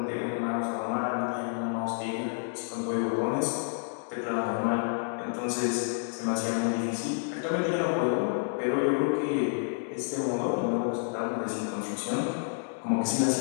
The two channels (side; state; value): right; silent; 58 dB below the other